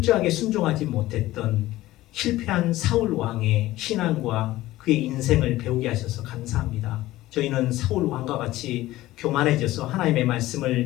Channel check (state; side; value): quieter; right; 16.6 dB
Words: 순종하지 못했던 실패한 사울 왕의 신앙과 그의 인생을 배우게 하셔서 감사합니다. 저희는 사울 왕과 같이 교만해져서 하나님의